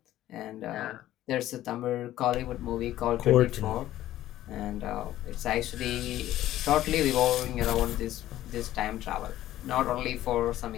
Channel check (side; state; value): right; quieter; 13.8 dB